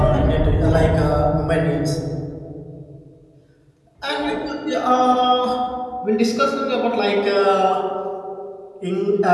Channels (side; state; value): both; identical; correlation 1.00